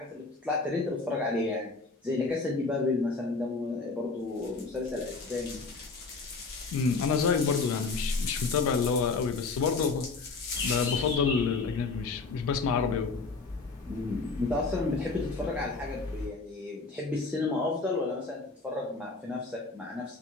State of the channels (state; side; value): quieter; right; 4.1 dB